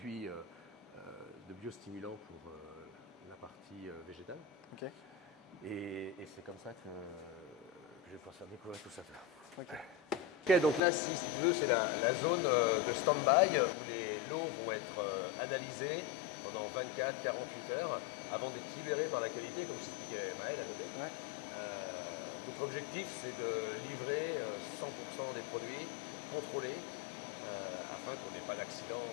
de biostimulants pour la partie végétale. Okay. Et c'est comme ça que je vais pouvoir faire découvrir tout ça. Ok, donc là, si tu veux, c'est la zone de stand-by où les lots vont être analysés pendant 24-48 heures avant d'être libérés par la qualité, comme je t'expliquais Maël à côté. Ouais. Notre objectif, c'est de livrer 100% des produits contrôlés afin qu'on n'ait pas d'accident.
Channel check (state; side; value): drops out; right; at 10.8 s